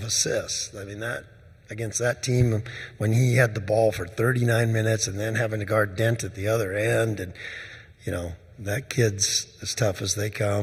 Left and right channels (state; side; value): identical; both; correlation 1.00